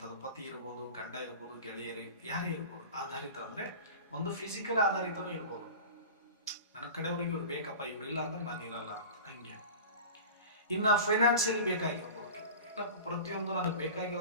ಪತಿ ಇರ್ಬೋದು, ಗಂಡ ಇರ್ಬೋದು, ಗೆಳೆಯರಿ ಯಾರೇ ಇರ್ಬೋದು. ಆಧಾರಿತ ಅಂದ್ರೆ ಒಂದು ಫಿಸಿಕಲ್ ಆಧಾರಿತನೂ ಇರ್ಬೋದು, ನನ್ನ ಕಡೆಯವ್ರಿಗೆ ಇವ್ರು ಬೇಕಪ್ಪ, ಇವ್ರಿಲ್ಲ ಅಂದ್ರೆ ನಾನು ಇರಲ್ಲ ಅಂತ, ಹಂಗೆ. ಇನ್ನ ಫೈನಾನ್ಸಿಯಲಿ ಬೇಕಾಗಿರ್ಬೋದು, ಇಲ್ಲ ಪ್ರತಿಯೊಂದು ನನಗೆ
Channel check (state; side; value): inverted; both; correlation -0.36